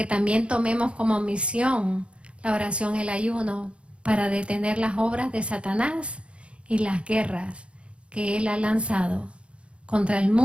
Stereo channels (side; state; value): left; late; 0.059 ms